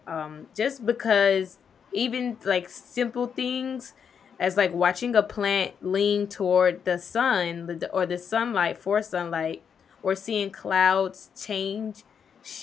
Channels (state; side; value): quieter; right; 7.2 dB